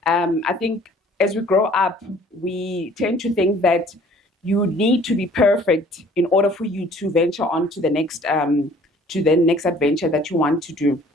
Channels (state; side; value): normal; both; correlation 0.54